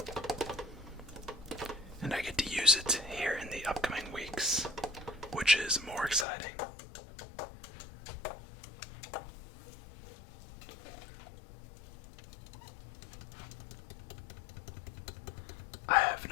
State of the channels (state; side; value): drops out; right; at 6.2 s